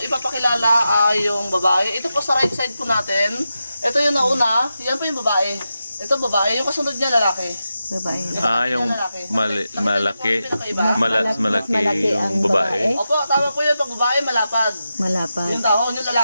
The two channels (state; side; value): inverted; both; correlation -0.89